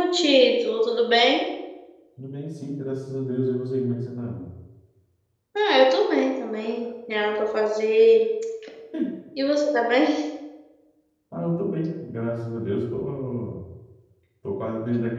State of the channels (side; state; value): both; identical; correlation 1.00